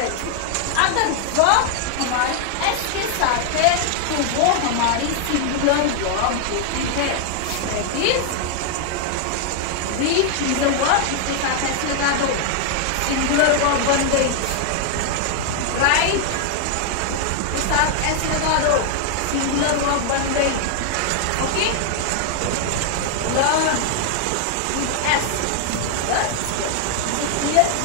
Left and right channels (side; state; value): both; different; correlation 0.00